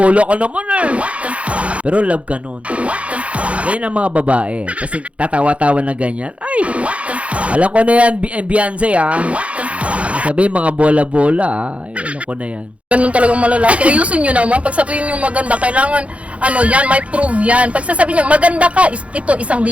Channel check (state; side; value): late; left; 0.063 ms